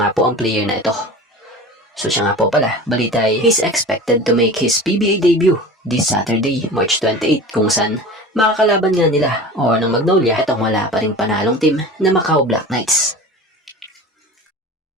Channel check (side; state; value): both; normal; correlation 0.35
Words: po ang player na ito. So siya nga po pala, balita ay he's expected to make his PBA debut this Saturday, March 28 kung saan makakalaban nga nila o ng Magnolia itong wala pa ring panalong team na Macau Black Knights.